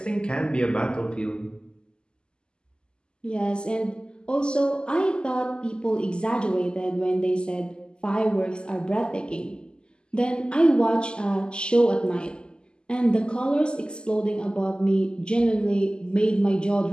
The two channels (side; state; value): right; late; 0.048 ms